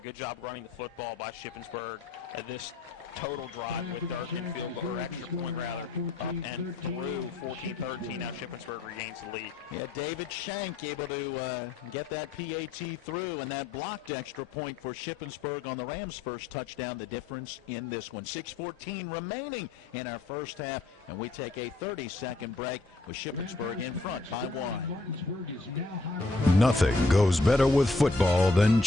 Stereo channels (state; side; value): quieter; right; 3.4 dB